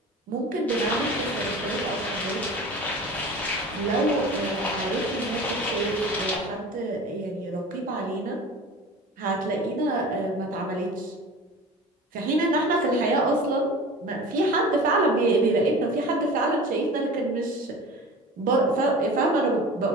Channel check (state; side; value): normal; both; correlation 0.38